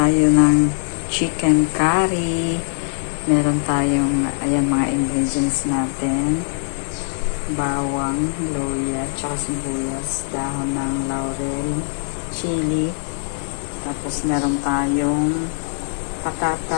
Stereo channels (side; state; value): right; silent; digital silence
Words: ng chicken curry. Meron tayong, ayan mga ingredients natin. Bawang, luya, tsaka sibuyas, dahon ng laurel, chili. Tapos meron tayong